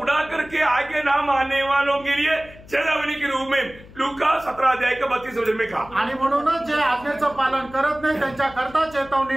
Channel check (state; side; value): noise; left; hum, 20 dB below the sound